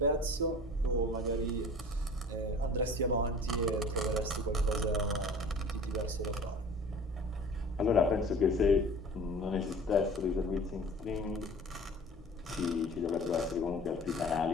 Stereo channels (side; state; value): both; normal; correlation 0.43